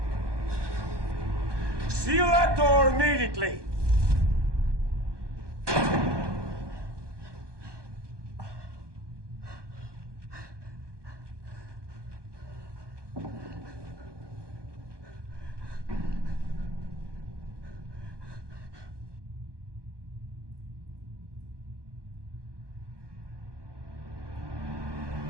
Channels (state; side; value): late; left; 1.2 ms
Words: Seal that door immediately!